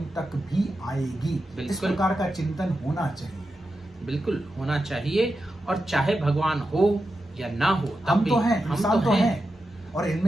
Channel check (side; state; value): both; normal; correlation 0.89